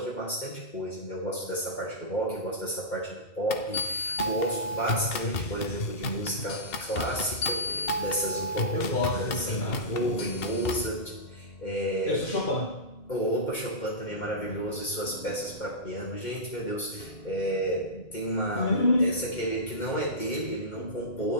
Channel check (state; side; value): late; right; 2.1 ms